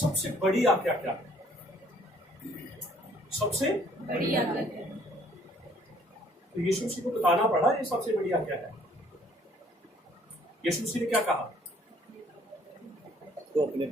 बड़ी आज्ञा क्या है? सबसे बड़ी आज्ञा है। तो यीशु मसीह को बताना पड़ा ये सबसे बड़ी आज्ञा है। यीशु मसीह ने क्या कहा? तो अपने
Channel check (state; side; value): normal; both; correlation 0.61